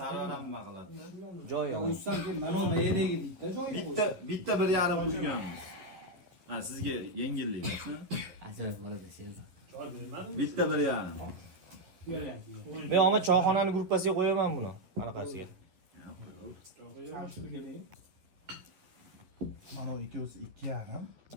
Sarvaram nima qiladi? Joyiga. Ussam keyin mana mayadagi bitta joyiga qo'ying. Bitta 1,5 qo'yganmiz. Ha, sizga yengillik bo'lsin. Ajoyib bo'ladi Sherzod. Bitta 1,5. Men omad choyxonani gruppasiga qo'yaman buni. Anaqasiga. Mana ikkovsi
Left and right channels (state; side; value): late; left; 11 ms